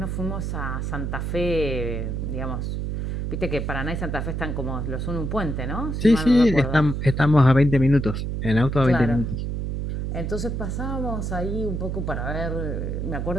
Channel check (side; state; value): right; noise; hum, 2 dB below the sound